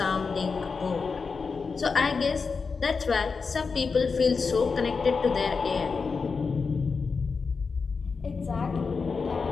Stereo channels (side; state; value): right; quieter; 4.9 dB